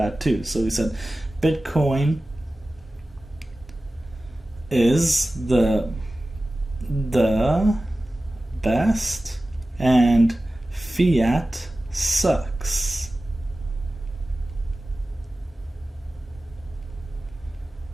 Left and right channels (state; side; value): normal; both; correlation 0.96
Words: too. So we said Bitcoin is the best and fiat sucks.